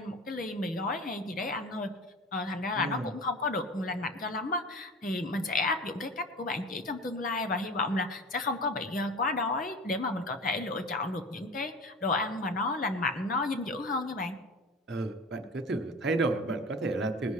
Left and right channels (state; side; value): normal; both; correlation 0.35